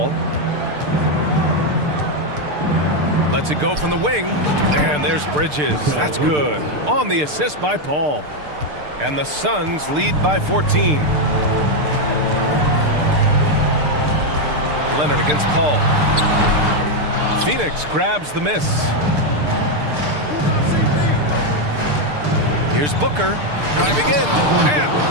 Lets it go from the wing. And there's Bridges. That's good. On the assist by Paul. And the Suns lead by 14. Leonard against Paul. Phoenix grabs the miss. Here's Booker. Driving in. And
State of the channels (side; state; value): left; late; 6.7 ms